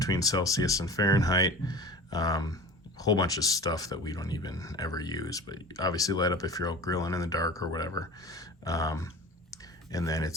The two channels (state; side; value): normal; both; correlation 0.37